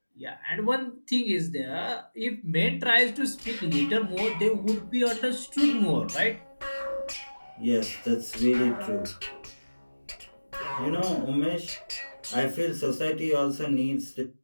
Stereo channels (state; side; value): inverted; both; correlation -1.00